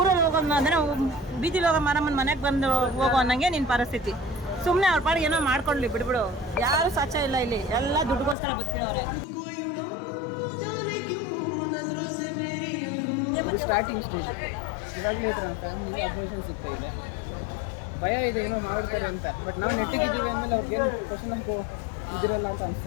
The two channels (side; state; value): right; drops out; at 8.3 s